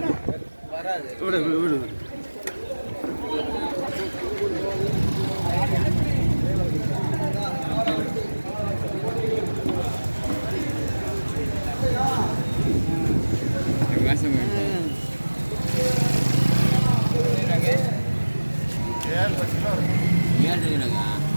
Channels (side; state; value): both; inverted; correlation -1.00